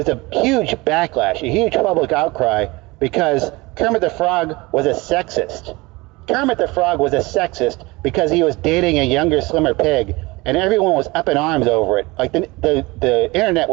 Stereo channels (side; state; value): left; quieter; 23.0 dB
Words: a huge backlash, a huge public outcry, because Kermit the Frog was a sexist. Kermit the Frog was a sexist because he was dating a younger, slimmer pig, and everyone was up in arms over it. Like the internet